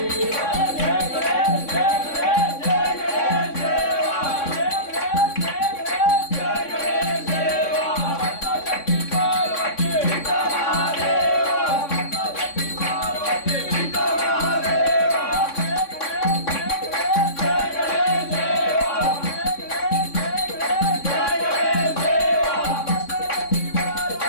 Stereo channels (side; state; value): right; late; 3.6 ms